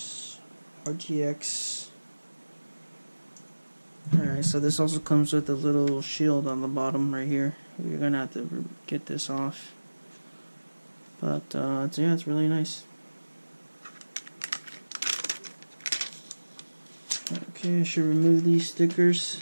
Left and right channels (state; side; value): inverted; both; correlation -1.00